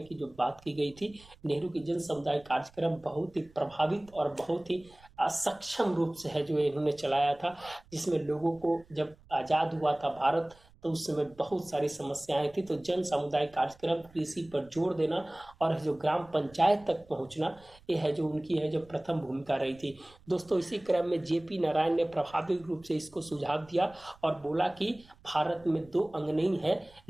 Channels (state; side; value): noise; right; rumble, 26 dB below the sound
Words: की जो बात की गई थी। नेहरू की जन समुदाय कार्यक्रम बहुत ही प्रभावित और बहुत ही असक्षम रूप से है जो इन्होंने चलाया था, जिसमें लोगों को जब आजाद हुआ था भारत तो उस समय बहुत सारी समस्याएं थी। तो जन समुदाय कार्यक्रम, कृषि पर जोर देना और जो ग्राम पंचायत तक पहुंचना, ये है जो उनकी है जो प्रथम भूमिका रही थी दोस्तों। इसी क्रम में जेपी नारायण ने प्रभावी रूप से इसको सुझाव दिया और बोला कि भारत में 2 अंग नहीं है,